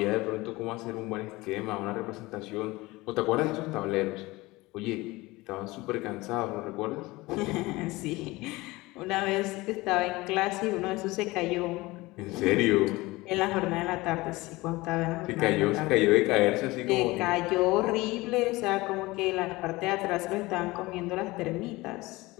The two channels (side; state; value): right; quieter; 20.9 dB